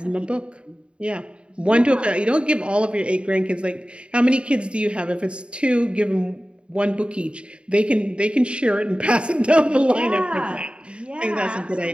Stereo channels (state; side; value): late; left; 0.055 ms